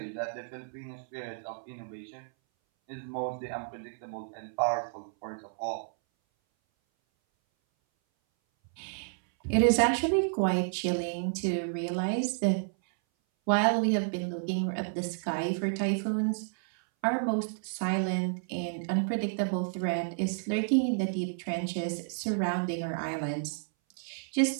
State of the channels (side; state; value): left; silent; 57 dB below the other